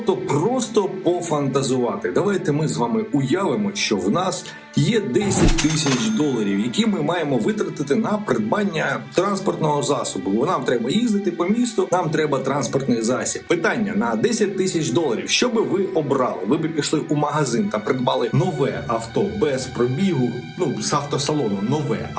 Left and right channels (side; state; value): both; identical; correlation 1.00